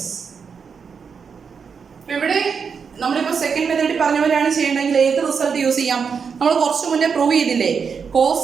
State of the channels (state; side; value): quieter; left; 6.1 dB